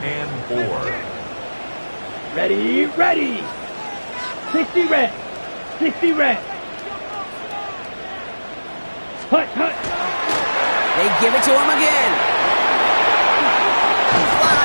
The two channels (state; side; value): inverted; both; correlation -1.00